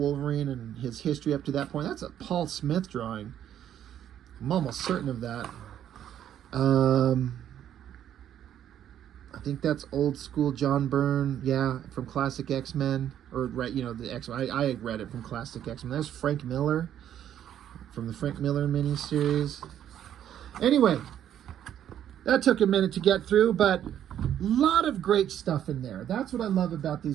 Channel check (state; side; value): quieter; left; 10.4 dB